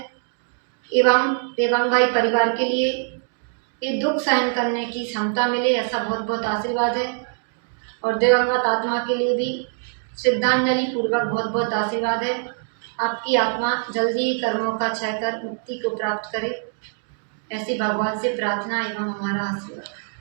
एवं देवांग भाई परिवार के लिए ये दुख सहन करने की क्षमता मिले, ऐसा बहुत बहुत आशीर्वाद है। और दिवंगत आत्मा के लिए भी श्रद्धांजलि पूर्वक बहुत बहुत आशीर्वाद है। आपकी आत्मा जल्दी ही कर्मों का क्षय कर मुक्ति को प्राप्त करे, ऐसी भगवान से प्रार्थना एवं हमारा आशीर्वाद।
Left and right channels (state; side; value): silent; left; 57 dB below the other